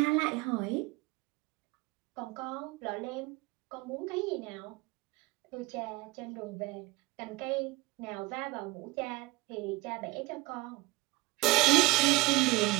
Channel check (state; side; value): quieter; left; 20.6 dB